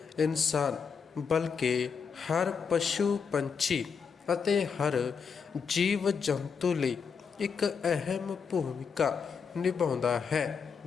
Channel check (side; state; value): right; quieter; 6.1 dB